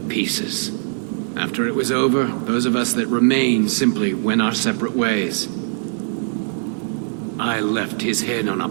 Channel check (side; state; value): left; silent; 58 dB below the other